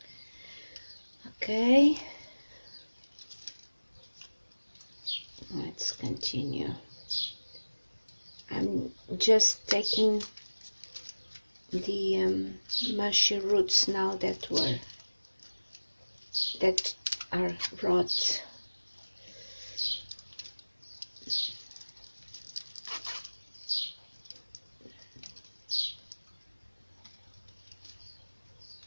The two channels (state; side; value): inverted; both; correlation -1.00